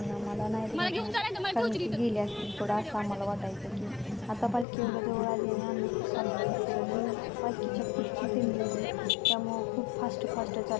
आम्हाला नाही भेटणार, कारण की गेले असतील थोडं, असं आम्हाला वाटायचं. की आता पालखी एवढ्या जवळ आली आणि अण्णा खूप चालत असतील आणि पालखीच्या पुढची दिंडी होती, त्यामुळं खूप फास्ट चालत होते.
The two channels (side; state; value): right; drops out; at 4.7 s